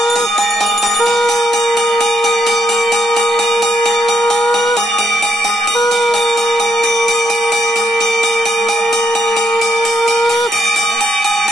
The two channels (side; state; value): both; normal; correlation 0.76